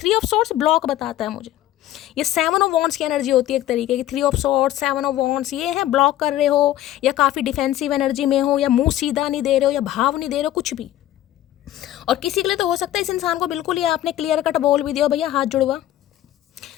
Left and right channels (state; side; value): quieter; right; 13.5 dB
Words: ऑफ सोर्ट्स ब्लॉक बताता है मुझे, ये 7 ऑफ वॉन्ड्स की एनर्जी होती है एक तरीके की। 3 ऑफ सोर्ट्स, 7 ऑफ वॉन्ड्स, ये है ब्लॉक कर रहे हो या काफ़ी डिफेंसिव एनर्जी में हो या मुंह सीधा नहीं दे रहे हो या भाव नहीं दे रहे हो, कुछ भी। और किसी के लिए तो हो सकता है इस इंसान को बिल्कुल ही आपने क्लियर कट बोल भी दिया भैया हाथ जुड़वा,